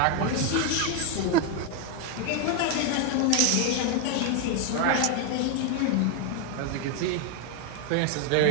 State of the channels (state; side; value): different; both; correlation 0.01